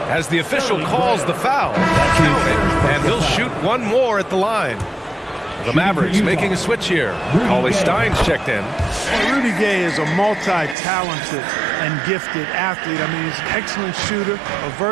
as the official calls the foul. Count it, and he'll shoot one more at the line. The Mavericks making a switch here. Cauley Stein's checked in. Well, Rudy Gay is a multi-talented and gifted athlete. I mean, he's an excellent shooter, a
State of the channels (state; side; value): drops out; left; at 10.8 s